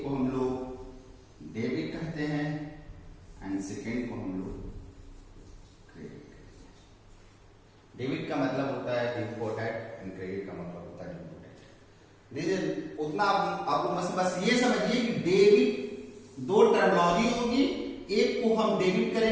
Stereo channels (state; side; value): identical; both; correlation 1.00